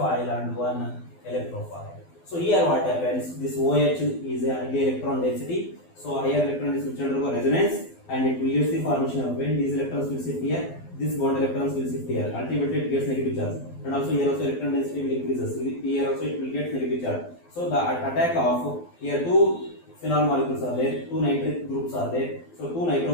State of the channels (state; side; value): late; right; 12 ms